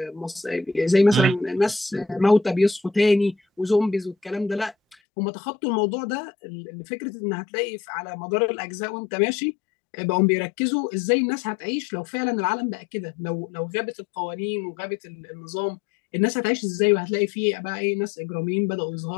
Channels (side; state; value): right; drops out; at 5.0 s